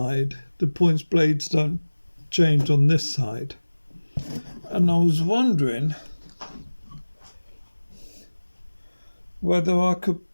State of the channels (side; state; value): both; inverted; correlation -1.00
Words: The points blades don't change on this side. And I was wondering whether I could